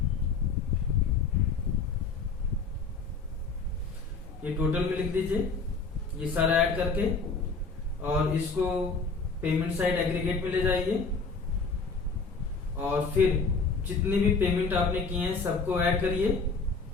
ये टोटल में लिख दीजिए ये सारा ऐड करके, और इसको पेमेंट साइड एग्रीगेट में ले जाइए और फिर जितने भी पेमेंट आपने किए हैं सबको ऐड करिए।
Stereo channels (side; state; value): right; quieter; 4.4 dB